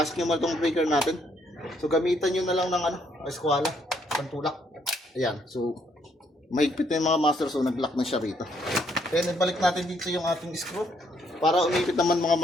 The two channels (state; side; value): normal; both; correlation 0.70